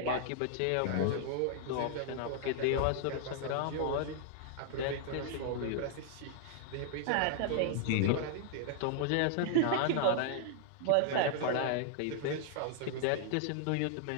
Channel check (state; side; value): different; both; correlation -0.01